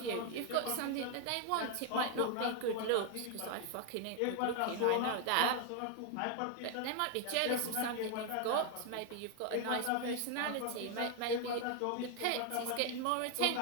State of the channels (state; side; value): different; both; correlation 0.01